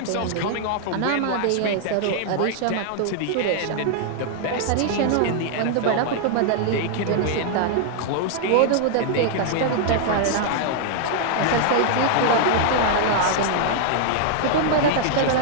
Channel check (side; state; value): both; different; correlation -0.01